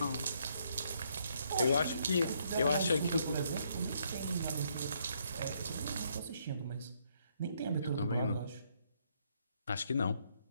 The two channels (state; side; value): inverted; both; correlation -0.71